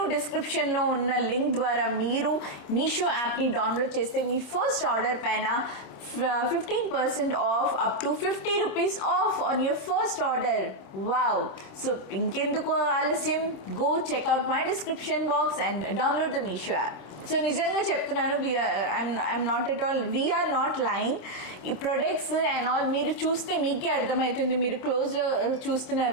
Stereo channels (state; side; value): late; right; 26 ms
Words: డిస్క్రిప్షన్లో ఉన్న లింక్ ద్వారా మీరు మీషో యాప్ని డౌన్లోడ్ చేస్తే మీ ఫస్ట్ ఆర్డర్ పైన 15% off, up to 50 rupees off on your first order. Wow. So ఇంకెందుకు ఆలస్యం, go check out my description box and download the Meesho app. So నిజంగా చెప్తున్నాను, I'm not at all, we're not lying. ఈ products and all మీరు చూస్తే మీకే అర్థమవుతుంది, మీరు క్లోజ్లో చూస్తున్నారు